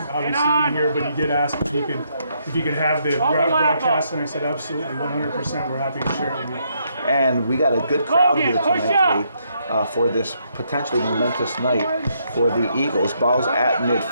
obviously be here, but he did ask if he could have the broadcast, and I said absolutely, 100%. We're happy to share it with you. And we got a good crowd here tonight, for this potentially momentous night for the Eagles. Ball's at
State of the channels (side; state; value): both; inverted; correlation -0.75